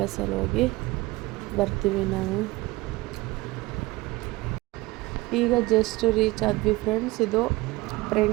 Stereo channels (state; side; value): quieter; left; 20.7 dB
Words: ಹೋಗಿ ಬರ್ತೀವಿ ನಾವು. ಈಗ ಜಸ್ಟ್ ರೀಚ್ ಆದ್ವಿ ಫ್ರೆಂಡ್ಸ್. ಇದು